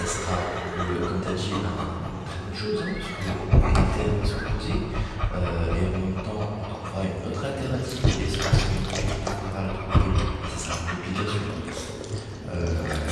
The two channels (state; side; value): identical; both; correlation 1.00